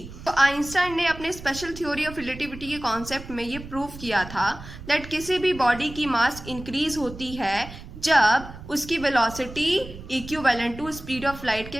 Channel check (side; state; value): right; noise; rumble, 14 dB below the sound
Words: तो आइंस्टाइन ने अपने स्पेशल थ्योरी ऑफ रिलेटिविटी के कॉन्सेप्ट में ये प्रूव किया था दैट किसी भी बॉडी की मास इंक्रीज होती है जब उसकी velocity equivalent to speed of light